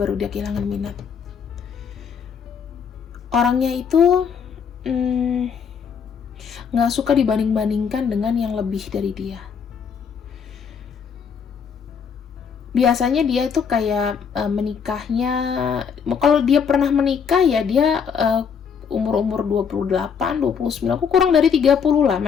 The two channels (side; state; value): right; quieter; 6.7 dB